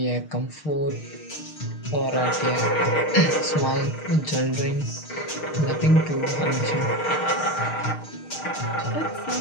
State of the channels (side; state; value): right; late; 6.5 ms